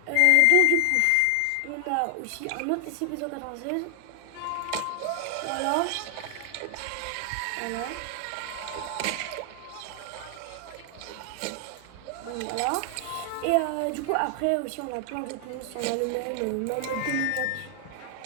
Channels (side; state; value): both; different; correlation 0.00